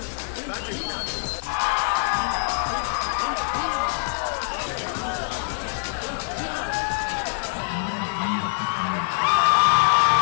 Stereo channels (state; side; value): silent; right; digital silence